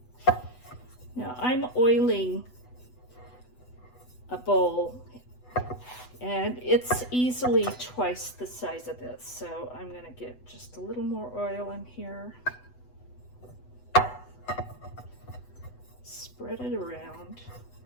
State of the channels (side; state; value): right; late; 8.0 ms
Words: Now I'm oiling a bowl, and it's easily twice the size of this. So I'm gonna get just a little more oil in here. Spread it around.